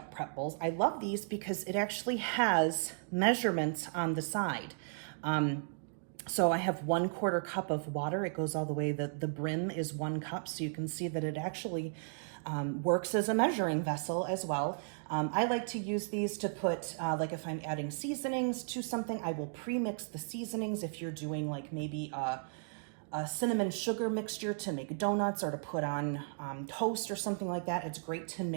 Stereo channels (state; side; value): silent; left; digital silence